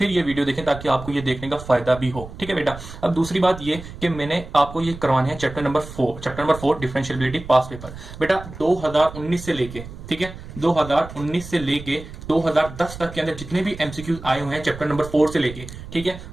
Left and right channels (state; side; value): noise; right; rumble, 13 dB below the sound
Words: ये वीडियो देखें ताकि आपको ये देखने का फायदा भी हो, ठीक है बेटा। अब दूसरी बात ये कि मैंने आपको ये करवाने हैं chapter number 4 differentiability past paper. बेटा 2019 से लेके, ठीक है, 2019 से लेके 2010 तक के अंदर जितने भी एमसीक्यूज आए हुए हैं चैप्टर नंबर 4 से लेके, ठीक है,